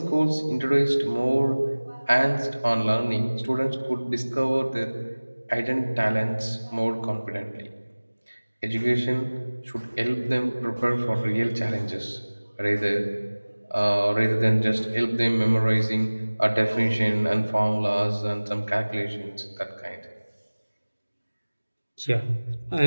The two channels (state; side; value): inverted; both; correlation -1.00